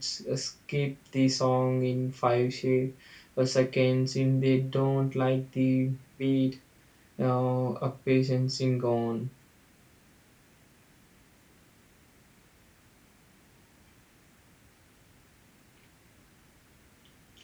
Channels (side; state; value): both; identical; correlation 1.00